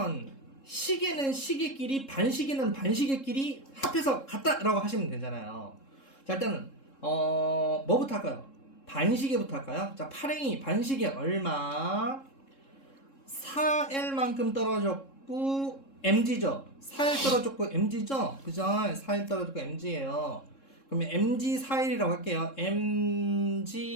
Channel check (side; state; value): right; late; 3.7 ms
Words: 시계는 시계끼리, 반시계는 반시계끼리 합해서 같다라고 하시면 되잖아요. 자, 일단은 뭐부터 할까요? 반시계부터 할까요? 자, 파랭이 반시계 얼마? 4L만큼 떨어졌고 mg죠. 4L 떨어졌고 mg죠. 그죠? 4L 떨어졌고 mg예요. 그러면 mg 4L이라고 할게요.